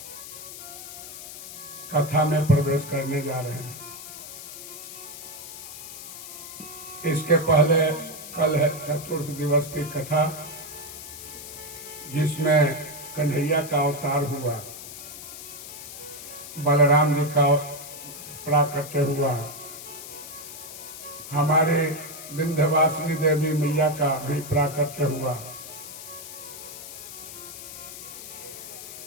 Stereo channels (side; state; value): left; noise; hiss, 12 dB below the sound